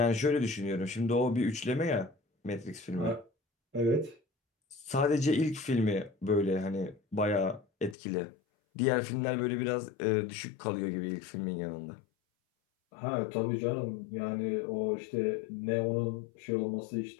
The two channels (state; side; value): drops out; right; at 8.0 s